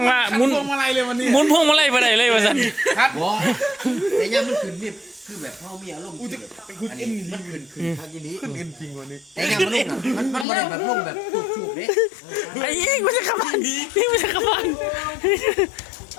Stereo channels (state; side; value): drops out; right; at 10.5 s